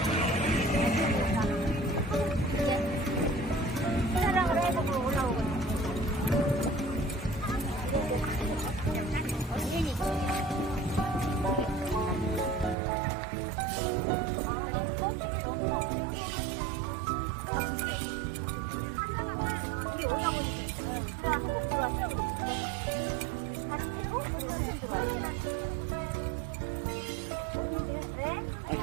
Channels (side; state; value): left; drops out; at 12.8 s